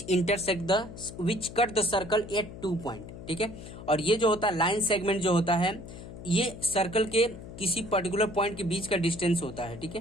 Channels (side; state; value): left; noise; hum, 13 dB below the sound